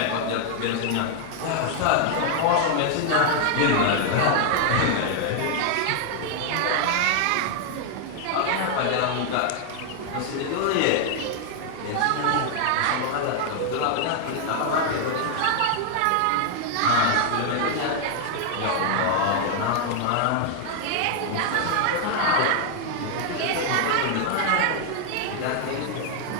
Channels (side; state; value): both; different; correlation 0.00